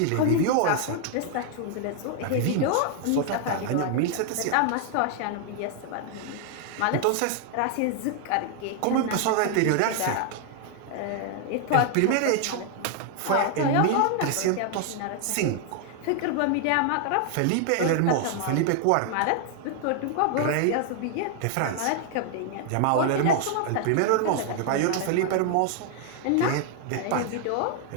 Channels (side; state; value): both; different; correlation 0.00